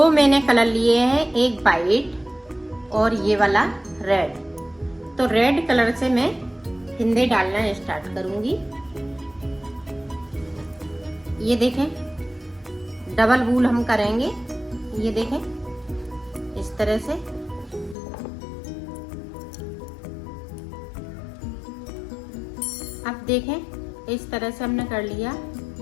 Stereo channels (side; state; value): right; drops out; at 17.9 s